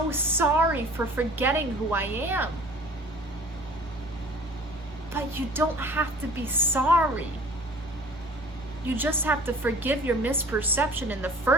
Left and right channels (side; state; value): both; normal; correlation 0.47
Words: sorry for forgetting who I am. But you don't have to be sorry. You just have to forgive your misperception in the